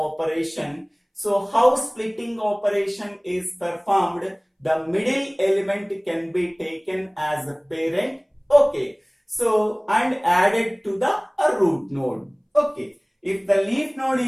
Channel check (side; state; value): both; identical; correlation 1.00